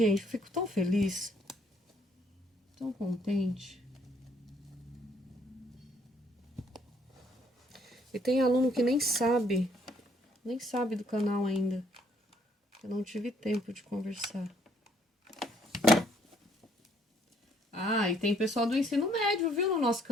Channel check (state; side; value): normal; both; correlation 0.66